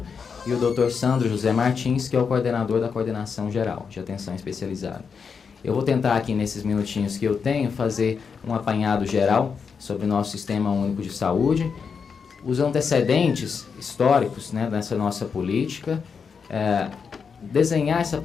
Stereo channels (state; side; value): quieter; right; 6.0 dB